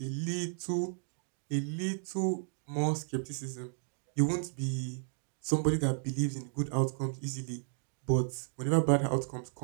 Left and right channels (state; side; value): silent; left; digital silence